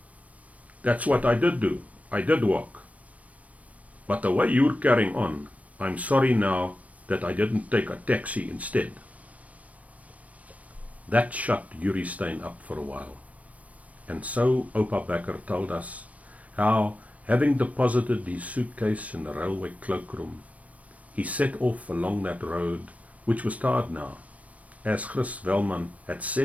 That's what I did do. I did walk. But the way you're carrying on, I'm sorry now that I didn't take a taxi instead. That shut Yuri Stein up for a while. And so Opa Becker told us how, having deposited his suitcase in the railway cloakroom, he set off along that road, which was tarred now, as Chris Velman had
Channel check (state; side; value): late; left; 0.067 ms